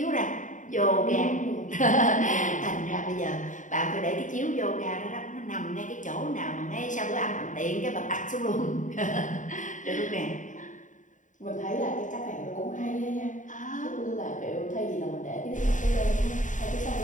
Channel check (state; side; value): late; right; 0.37 ms